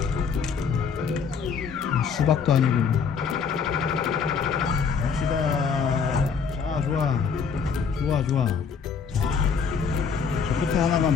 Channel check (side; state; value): right; quieter; 6.0 dB